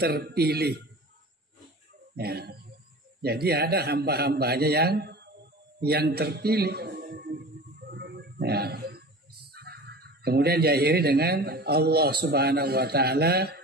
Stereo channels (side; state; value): both; normal; correlation 0.36